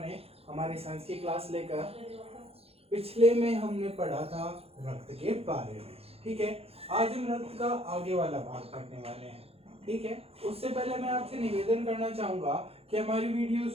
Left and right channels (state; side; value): late; left; 0.29 ms